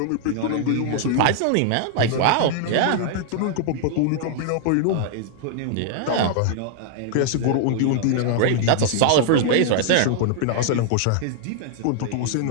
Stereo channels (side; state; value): both; different; correlation -0.01